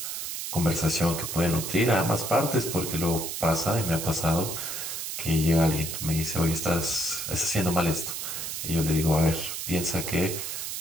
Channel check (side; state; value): right; noise; hiss, 5 dB below the sound